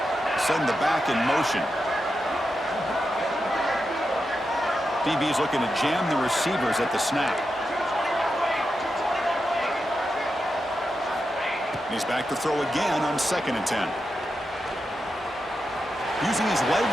Send the back in motion. DB's looking to jam the receivers at the snap. He's back to throw again on 2nd and 10. Using his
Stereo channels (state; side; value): normal; both; correlation 0.88